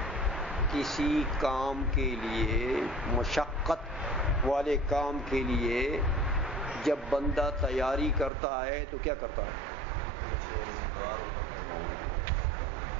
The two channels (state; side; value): drops out; left; at 8.3 s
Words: کسی کام کے لیے، مشقت والے کام کے لیے جب بندہ تیاری کرتا ہے تو کیا کرتا ہے؟